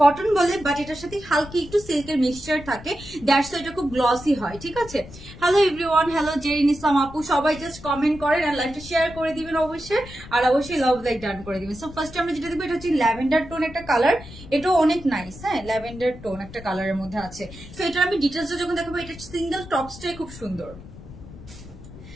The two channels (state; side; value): noise; left; rumble, 16 dB below the sound